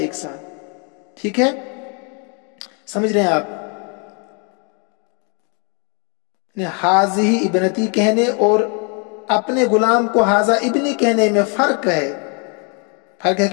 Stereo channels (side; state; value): right; quieter; 36.6 dB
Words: ساتھ. ٹھیک ہے، سمجھ رہے ہیں آپ؟ حاذی ابنتی کہنے اور اپنے غلام کو حاذا ابنی کہنے میں فرق ہے. فرق ہے